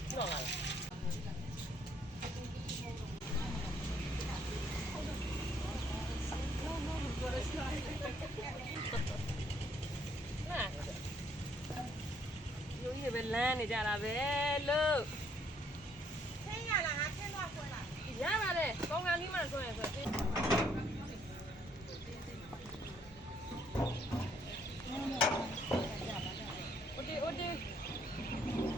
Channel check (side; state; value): both; normal; correlation 0.67